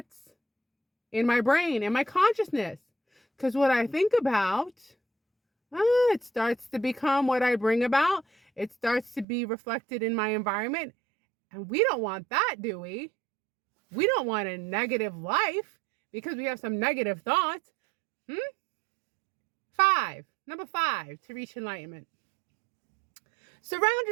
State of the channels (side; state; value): left; drops out; at 9.2 s